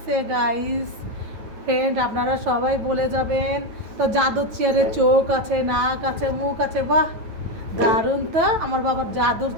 গাইস ফ্রেন্ড, আপনারা সবাই বলে যাবেন। তো জাদুর চেয়ারে চোখ আছে, নাক আছে, মুখ আছে, বাহ দারুণ। তো আমার বাবার জাদুর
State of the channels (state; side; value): late; left; 9.2 ms